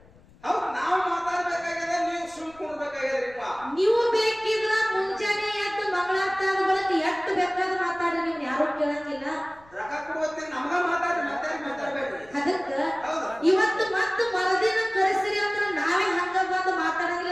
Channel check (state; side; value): noise; left; rumble, 27 dB below the sound